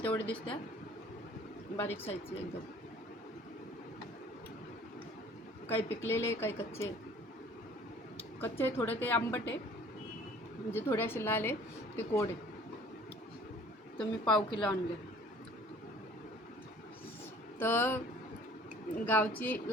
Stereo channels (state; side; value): normal; both; correlation 0.52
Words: तेवढे दिसत्या, बारीक साईजचे एकदम. काही पिकलेले, काही कच्चे. कच्चे थोडे ते आंबट आहे, म्हणजे थोडे असे लाल आहे ते कोड आहे. तर मी पाव किलो आणले. तर गावची